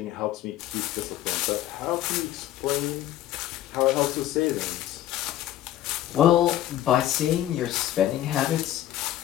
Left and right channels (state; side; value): quieter; right; 13.0 dB